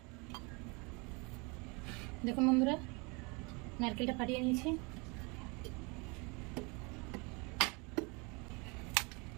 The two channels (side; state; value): left; quieter; 29.6 dB